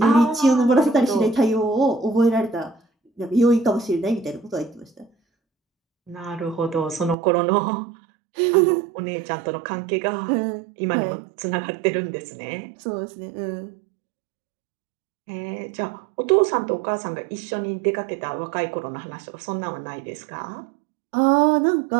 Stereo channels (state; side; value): drops out; left; at 7.2 s